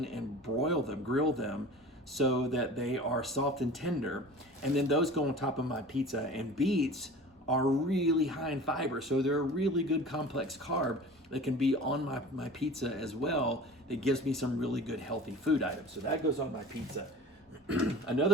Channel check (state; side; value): normal; both; correlation 0.40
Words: and broil them, grill them so that they are soft and tender. And then those go on top of my pizza. And beets are really high in fiber, so they're a really good complex carb that can be on my pizza as well. That gives me some really good healthy food items. So that goes on my pizza.